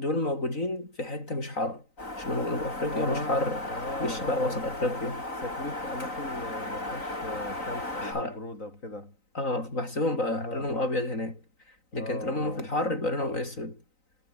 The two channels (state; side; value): late; right; 3.9 ms